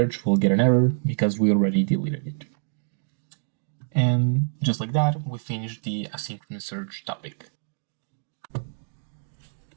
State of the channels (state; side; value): silent; left; digital silence